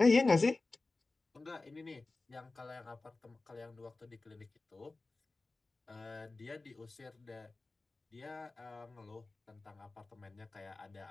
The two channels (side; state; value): right; quieter; 3.4 dB